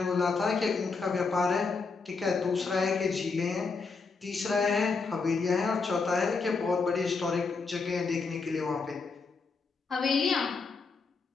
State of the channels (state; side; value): quieter; right; 4.5 dB